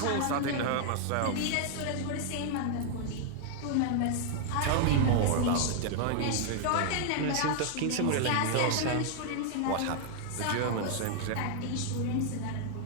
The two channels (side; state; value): both; different; correlation 0.00